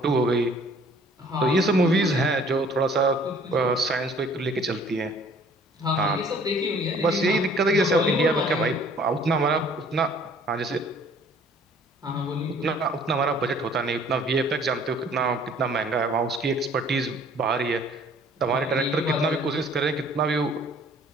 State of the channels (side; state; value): both; normal; correlation 0.55